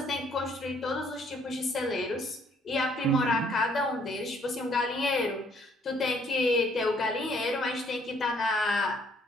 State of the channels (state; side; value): normal; both; correlation 0.65